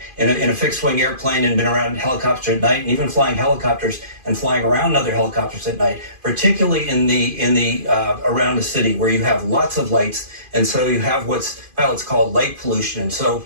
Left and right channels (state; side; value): late; left; 2.5 ms